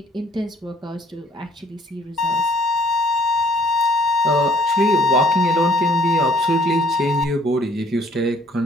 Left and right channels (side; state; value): both; normal; correlation 0.62